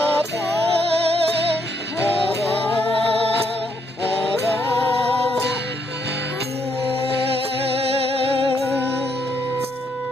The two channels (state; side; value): normal; both; correlation 0.75